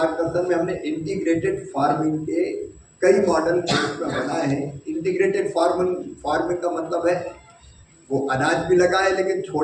में हमने इंटीग्रेटेड फार्मिंग के कई मॉडल बनाए हैं। इंटीग्रेटेड फार्मिंग का मतलब है वो अनाज भी लगाए, लेकिन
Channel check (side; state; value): both; identical; correlation 1.00